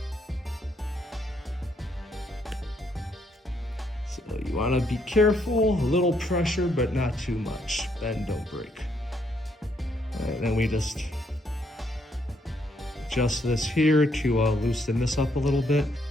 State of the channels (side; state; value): both; normal; correlation 0.73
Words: So you want to be careful, a little pressure, but not too much. Bend, don't break. All right, then we just adjust this here to loosen this up a little bit.